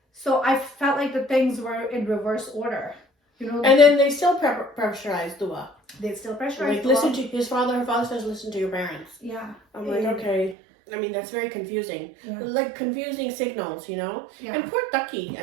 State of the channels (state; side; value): drops out; left; at 10.6 s